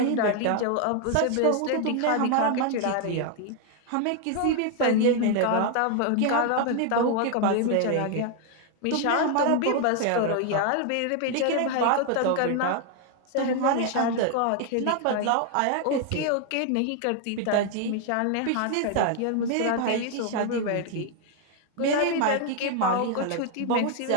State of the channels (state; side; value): different; both; correlation 0.00